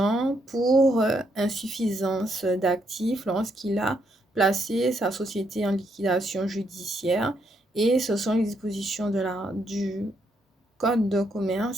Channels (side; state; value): both; normal; correlation 0.75